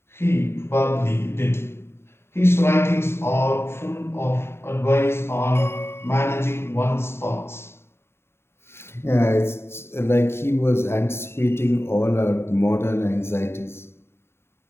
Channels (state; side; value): late; right; 0.12 ms